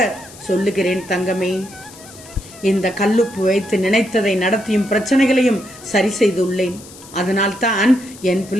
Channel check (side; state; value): left; noise; hiss, 19 dB below the sound